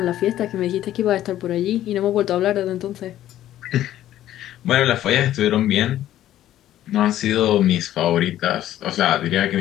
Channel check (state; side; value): quieter; right; 12.8 dB